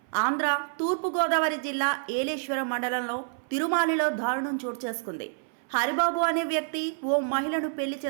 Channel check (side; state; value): left; silent; 59 dB below the other